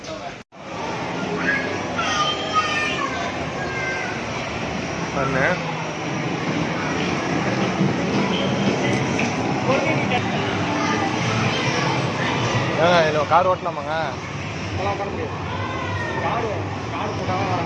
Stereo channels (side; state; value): both; identical; correlation 1.00